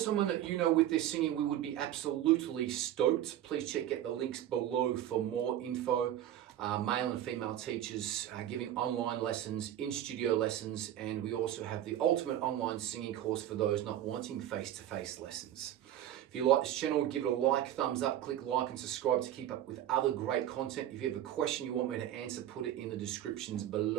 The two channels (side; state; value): left; quieter; 11.9 dB